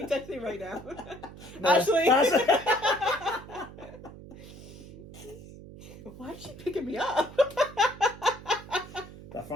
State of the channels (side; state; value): right; noise; hum, 16 dB below the sound